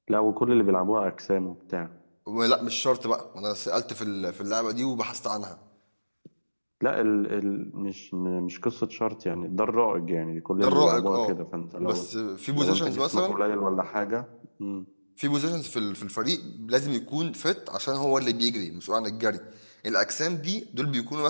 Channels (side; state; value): both; inverted; correlation -1.00